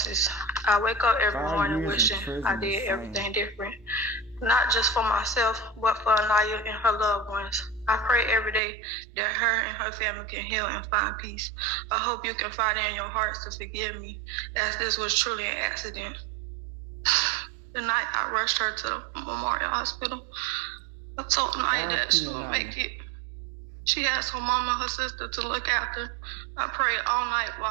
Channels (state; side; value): drops out; left; at 8.6 s